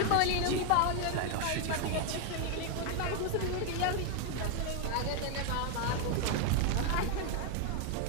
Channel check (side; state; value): both; different; correlation 0.01